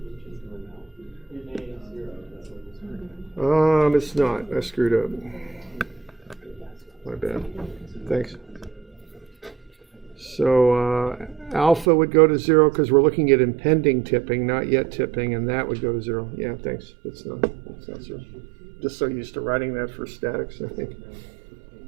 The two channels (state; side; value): drops out; left; at 11.9 s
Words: It's not. I screwed up. My bad. Thanks. So alpha would go to 0 because we're looking at impending tipping, not yet tipping, and that would go to 0. Yeah, thanks. It's not 0. Just so used to writing that for statics, I think.